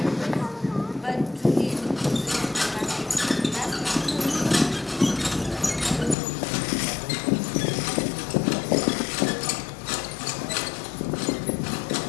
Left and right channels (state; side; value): drops out; right; at 6.2 s